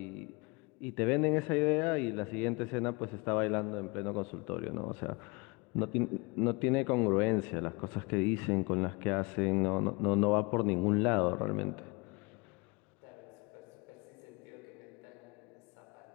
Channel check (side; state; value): right; quieter; 27.7 dB